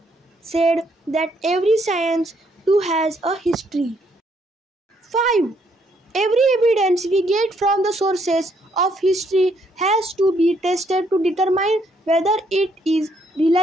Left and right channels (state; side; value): normal; both; correlation 0.71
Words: said that every science too has a history. 5. Every evidence we get from the sources of history has to be tested to determine whether it is